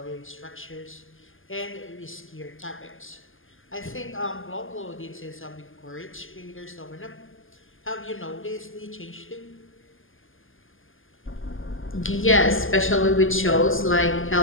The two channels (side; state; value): right; late; 0.59 ms